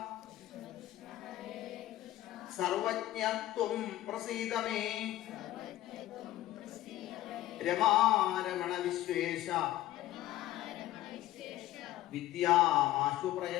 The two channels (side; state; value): right; quieter; 14.7 dB